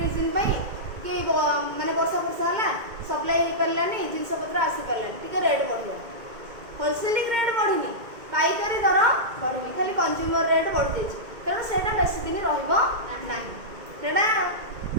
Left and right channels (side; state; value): left; late; 2.2 ms